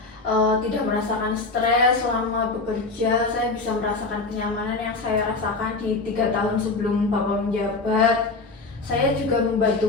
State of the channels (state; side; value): quieter; right; 3.7 dB